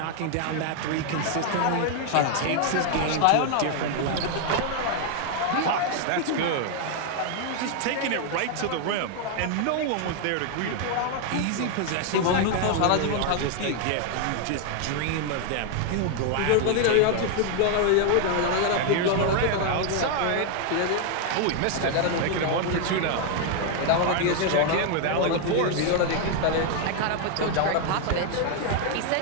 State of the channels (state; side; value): different; both; correlation 0.00